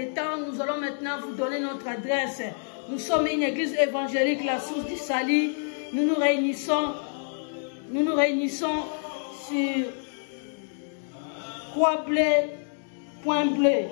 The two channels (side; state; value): right; silent; digital silence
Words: temps. Nous allons maintenant vous donner notre adresse. Nous sommes une église évangélique, la source du salut. Nous nous réunissons sur Point Bleu,